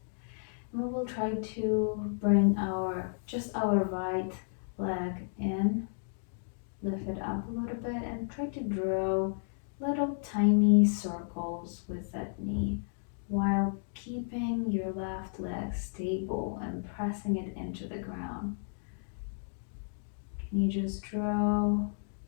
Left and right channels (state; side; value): silent; right; digital silence